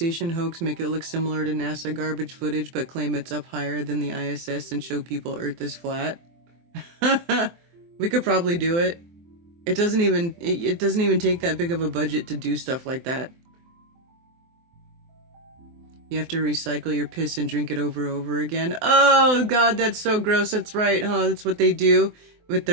hoax, make it look similar to NASA garbage footage, but claim it's up higher than the ISS and show people Earth is flat. We could probably do it. It doesn't even take that big of a budget to do stuff like that. You have to recycle your piss and drink it over again. Oh, God, that's so gross. That's right, huh? That's what they do with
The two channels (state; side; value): late; left; 24 ms